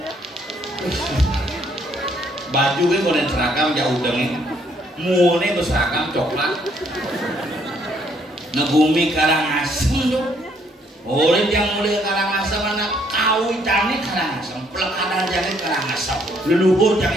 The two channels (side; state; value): both; normal; correlation 0.67